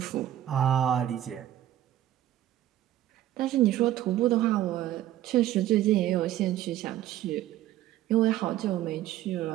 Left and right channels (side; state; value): left; quieter; 13.0 dB